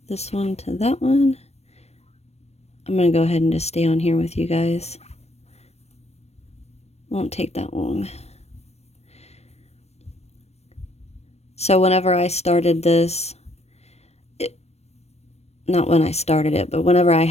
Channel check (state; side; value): late; right; 0.31 ms